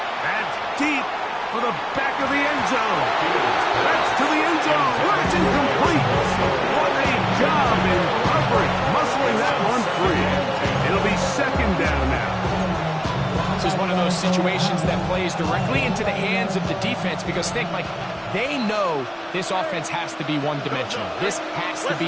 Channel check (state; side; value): identical; both; correlation 1.00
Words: That's deep for the back of the end zone. That's to the end zone. It's incomplete. job in coverage, muscling that one free. It'll be second down now. This is one of those situations that plays directly into the hands of the defense because think, Mike, they know this offense has to be one-dimensional. This has to